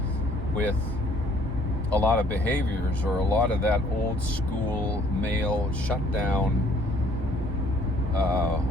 with a lot of behaviors or a lot of that old school male shutdown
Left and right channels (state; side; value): normal; both; correlation 0.60